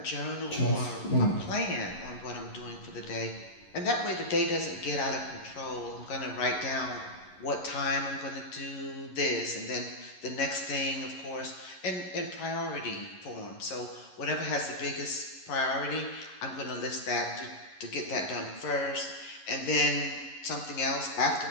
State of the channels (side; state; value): right; late; 11 ms